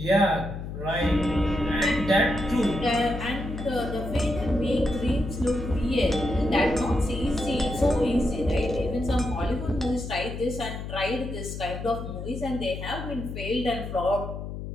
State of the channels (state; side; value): noise; left; hum, 7 dB below the sound